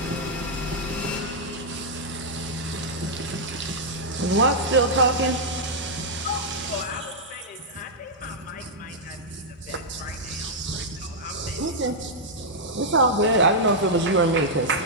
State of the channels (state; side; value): normal; both; correlation -0.07